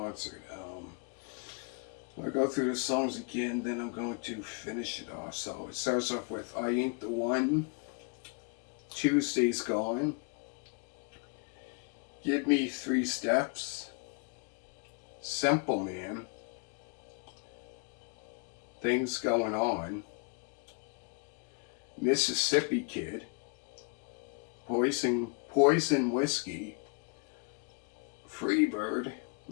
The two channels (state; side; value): quieter; right; 37.0 dB